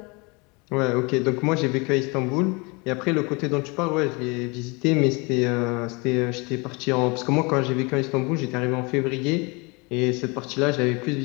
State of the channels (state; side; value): quieter; right; 28.3 dB